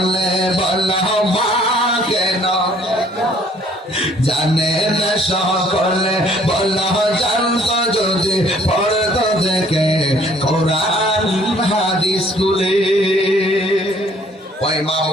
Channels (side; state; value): both; normal; correlation 0.59